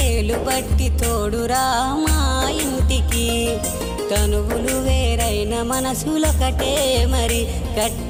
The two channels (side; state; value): both; identical; correlation 1.00